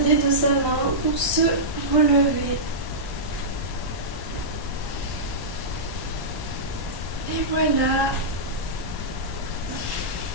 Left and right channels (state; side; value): late; left; 1.0 ms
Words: de sa main pour se relever. Et voilà.